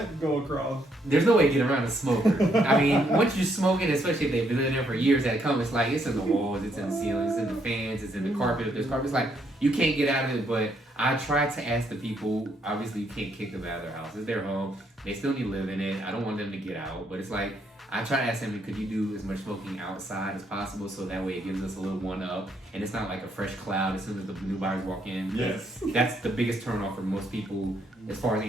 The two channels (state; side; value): normal; both; correlation 0.73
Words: go across. There's no way to get around a smoker. I mean, once you're smoking, especially if they've been in there for years at a come, it's like, it's in the walls, it's in the ceilings, it's in the fans, it's in the carpet. If there's carpet, it's like, you can't get out of it. But I try to ask the people, obviously you can't kick them out of their house. It's their home. They still need to live in it. I don't want them to get out. But it's like, I try to ask them, could you do as much smoking outside as possible, so that way it gives us a little one up, and it's not like a fresh cloud as soon as the new buyers walk in. Yes. That's the biggest turn off for most people as far as